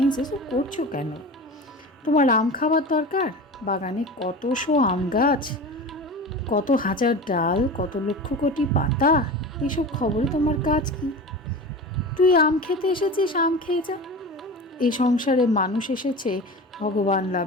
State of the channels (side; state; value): both; normal; correlation 0.31